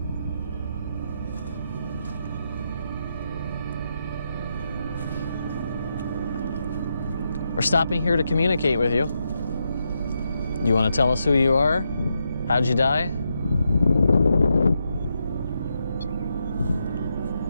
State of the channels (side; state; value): both; inverted; correlation -0.83